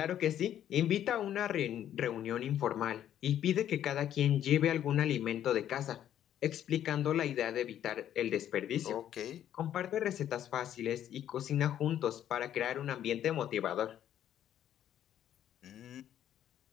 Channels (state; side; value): quieter; right; 10.8 dB